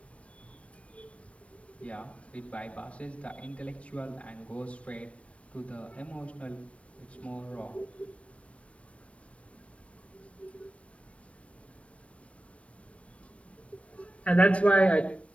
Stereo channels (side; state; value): right; late; 0.063 ms